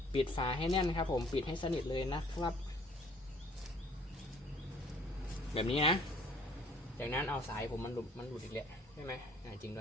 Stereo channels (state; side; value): normal; both; correlation 0.57